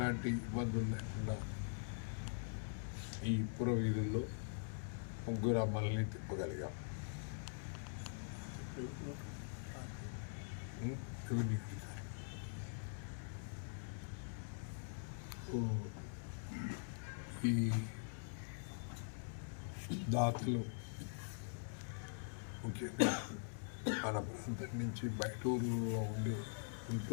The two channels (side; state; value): right; silent; digital silence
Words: ఇబ్బందులు లేకుండా ఈ పుర వీధుల్లో ముగ్గురు అమ్మల్ని తిప్పగలిగాం. ఈ దాతలు ముఖ్యంగా మన ప్రాంతం నుంచి బయట ఊళ్ళో